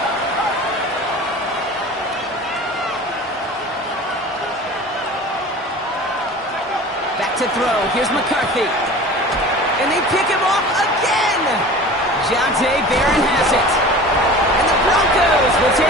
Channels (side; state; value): both; normal; correlation 0.39